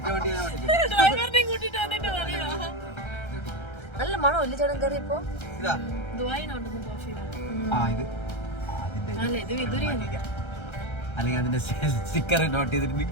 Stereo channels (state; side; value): late; right; 1.3 ms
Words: വണ്ടി ഞാൻ ഓടിക്കും. ഡ്രൈവറിനെ കൂട്ടിട്ട് വന്നിട്ട് പറയാ. നല്ല മണം ഇല്ല ചേട്ടൻ കയറിയപ്പോ? ഇതാ ദുബായിനുണ്ടെന്ന് കോഫി. ഇത് അതിന്റെ അല്ല ഇത് വിദുരിയാണ്. അല്ലെങ്കിൽ അതിന്റെ സ്റ്റിക്കർ നോട്ട് ചെയ്തിട്ട്